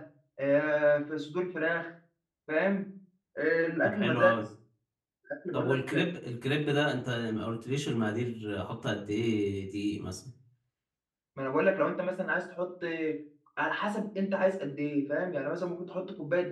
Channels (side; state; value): both; identical; correlation 1.00